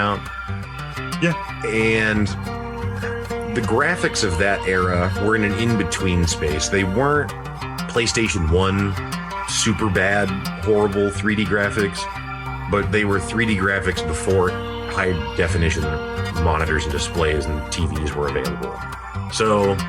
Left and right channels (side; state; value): both; identical; correlation 1.00